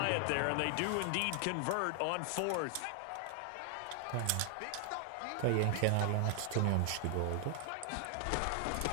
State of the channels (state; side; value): different; both; correlation 0.00